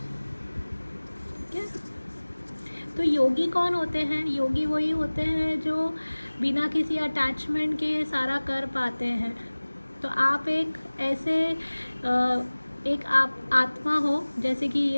ठीक है, तो योगी कौन होते हैं? योगी वही होते हैं जो बिना किसी अटैचमेंट के सारा कर पाते हैं। तो आप एक ऐसे एक आप आत्मा हो, जैसे कि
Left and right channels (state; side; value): inverted; both; correlation -1.00